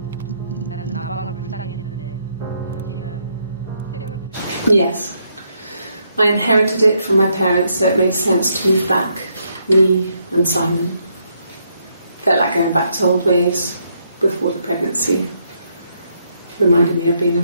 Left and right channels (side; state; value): both; inverted; correlation -0.76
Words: 나는 나방을 불쌍히 했는데 넌 지금 새벽을 Yes. I inherited it from my parents, so it made sense to move back, me and Simon. Felt like going back to old ways before the pregnancy. Reminded me of being a